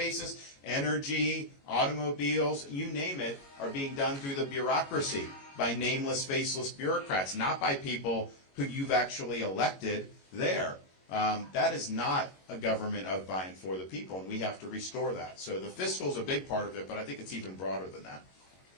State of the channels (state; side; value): late; right; 22 ms